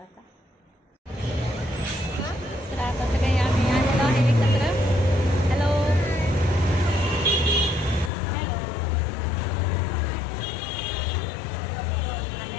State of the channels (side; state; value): right; drops out; at 8.1 s